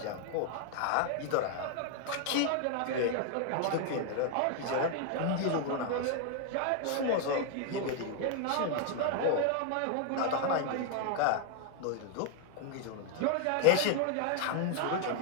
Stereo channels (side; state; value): both; different; correlation 0.00